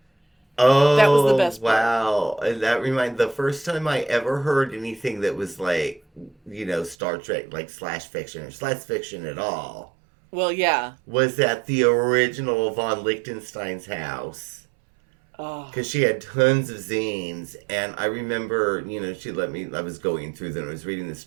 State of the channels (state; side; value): drops out; left; at 7.0 s